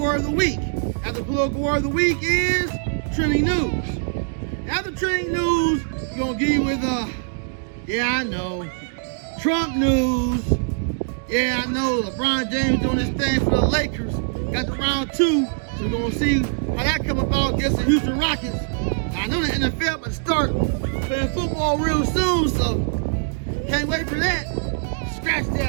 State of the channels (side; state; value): left; silent; digital silence